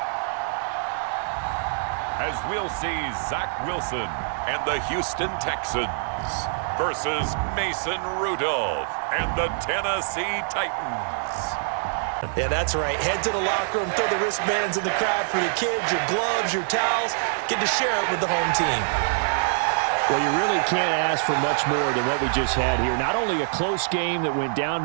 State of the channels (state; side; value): silent; left; digital silence